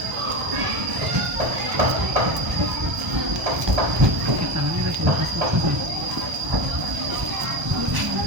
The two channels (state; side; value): late; left; 1.2 ms